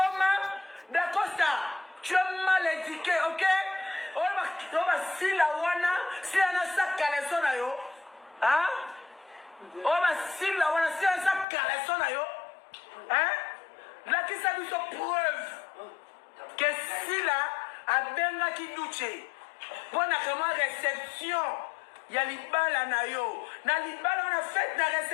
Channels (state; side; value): drops out; right; at 11.5 s